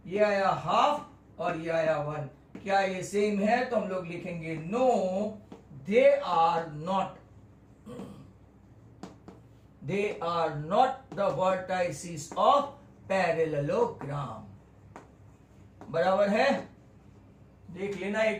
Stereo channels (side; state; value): both; identical; correlation 1.00